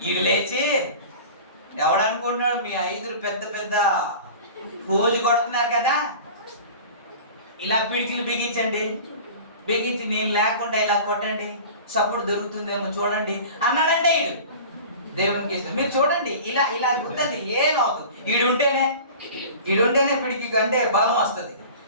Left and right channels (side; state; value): both; inverted; correlation -0.39